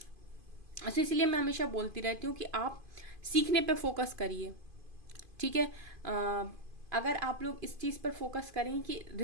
अच्छा, इसलिए मैं हमेशा बोलती रहती हूँ कि आप सीखने पे फोकस करिए, ठीक है। अगर आप लोग इस चीज़ पर फोकस करें कि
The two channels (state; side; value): late; left; 2.5 ms